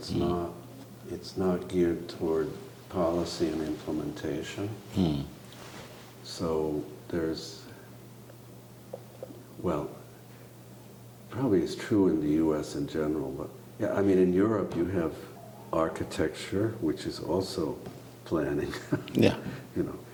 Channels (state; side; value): identical; both; correlation 1.00